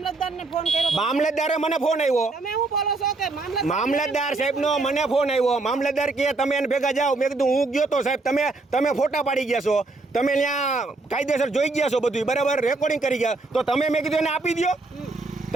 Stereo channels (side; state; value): left; quieter; 3.4 dB